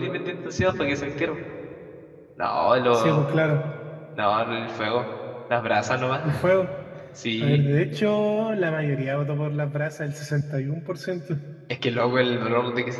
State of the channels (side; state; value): both; identical; correlation 1.00